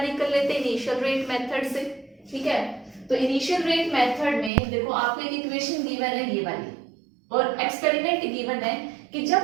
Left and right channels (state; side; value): drops out; left; at 4.5 s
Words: लेते हैं इनिशियल रेट मेथड से, ठीक है। तो इनिशियल रेट मेथड में देखो आपको एक इक्वेशन गिवन है ये वाली, और एक्सपेरिमेंट गिवन है कि